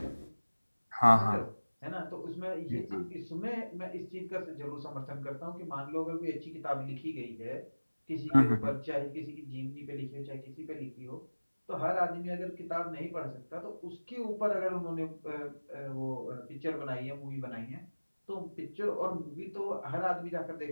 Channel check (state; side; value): inverted; both; correlation -1.00